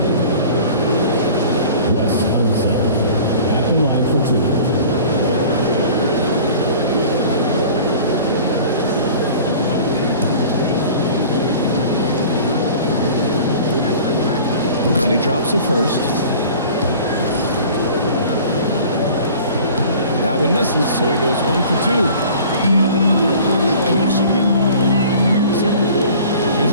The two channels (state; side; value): inverted; both; correlation -0.44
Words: Wes Unseld at the line for 2. And he drops it first. That one misses, so he goes 1 for 2. Yeah, they should get more of the line here in the second quarter. Here's